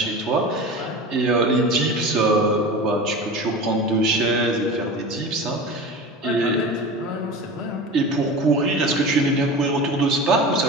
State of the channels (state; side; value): normal; both; correlation 0.32